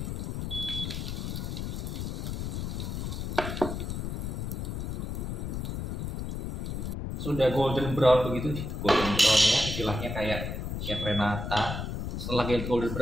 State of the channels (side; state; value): left; noise; rumble, 3 dB below the sound